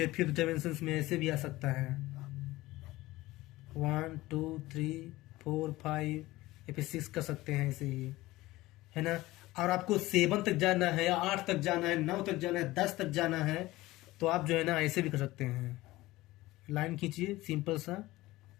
5th डायमेंशन में ऐसे भी आ सकता है 1 2 3 4 5, या फिर 6 कर सकते हैं ऐसे ही, है ना। और आपको 7 तक जाना है, 8 तक जाना है, 9 तक जाना है, 10 तक जाना है, तो आप जो है ना ऐसे भी कर सकते हैं। लाइन खींचिए सिंपल सा,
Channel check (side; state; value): right; quieter; 18.4 dB